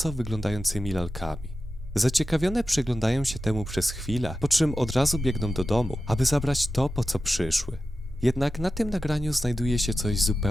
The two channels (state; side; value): normal; both; correlation 0.92